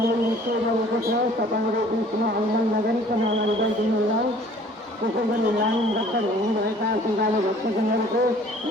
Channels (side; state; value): both; normal; correlation 0.53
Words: छ। तपाईँहरू बिचमा आन्दोलन नगरिकन अगाडि बढिदिनु होला। त्यसै गरी लाइन रद्द हुनुभएका श्रद्धालु भक्तजनहरूको